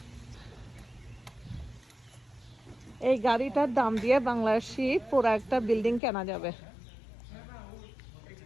এই গাড়িটার দাম দিয়ে বাংলাদেশি পুরো একটা বিল্ডিং কেনা যাবে,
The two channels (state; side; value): drops out; right; at 6.0 s